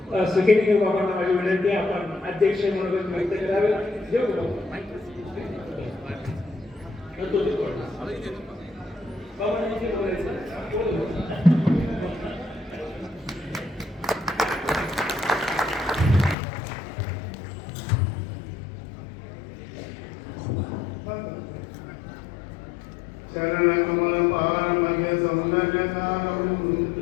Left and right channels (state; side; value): drops out; right; at 16.4 s